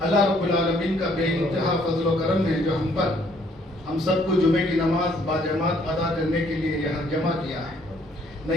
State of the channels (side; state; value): both; normal; correlation 0.64